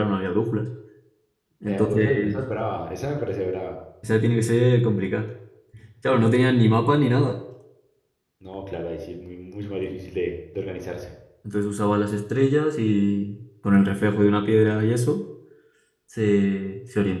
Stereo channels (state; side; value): identical; both; correlation 1.00